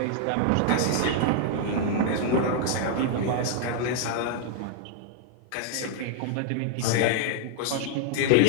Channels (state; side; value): different; both; correlation 0.00